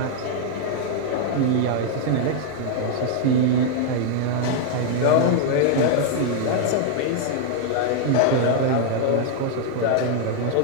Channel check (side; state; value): both; different; correlation 0.00